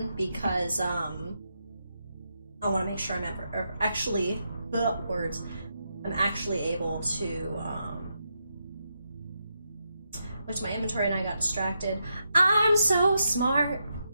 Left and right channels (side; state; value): both; inverted; correlation -0.83